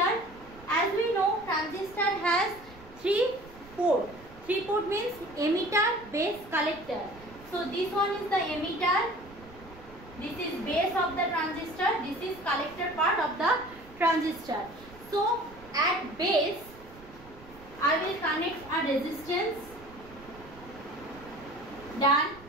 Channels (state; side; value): noise; right; rumble, 20 dB below the sound